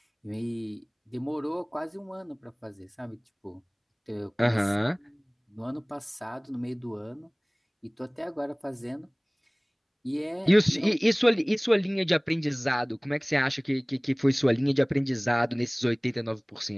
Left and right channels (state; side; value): identical; both; correlation 1.00